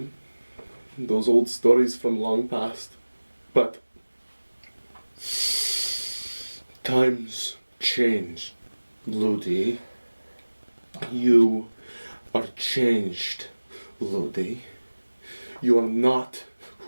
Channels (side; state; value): both; inverted; correlation -1.00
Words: those old stories from long past. But times change, Ludi. You are changed, Ludi. You are not